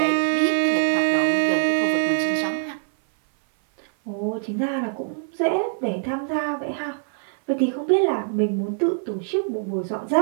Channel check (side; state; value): left; silent; 59 dB below the other